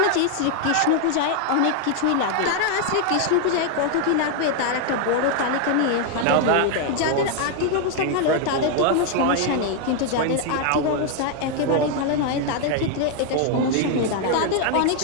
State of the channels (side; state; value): both; different; correlation 0.00